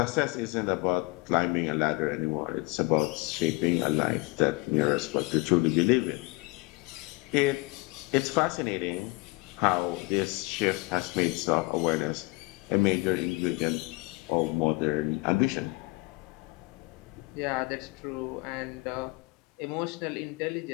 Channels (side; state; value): right; quieter; 23.9 dB